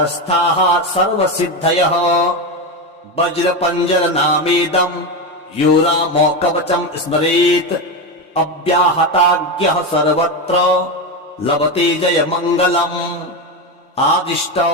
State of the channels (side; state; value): both; normal; correlation 0.15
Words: सर्वसिद्धयः वज्रपञ्जरनामेदम् यो रामो कवचम् स्मरेत् अव्याहताज्ञः सर्वत्र लभते जयमङ्गलम्